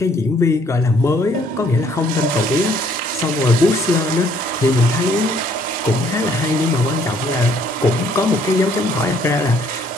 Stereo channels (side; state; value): both; normal; correlation 0.63